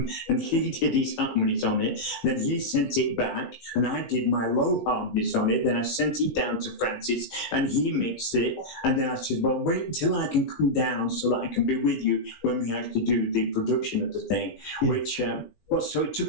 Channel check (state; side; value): late; right; 18 ms